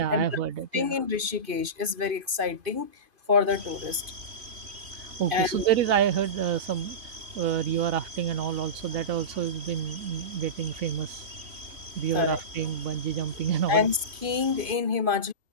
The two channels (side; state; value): left; late; 2.5 ms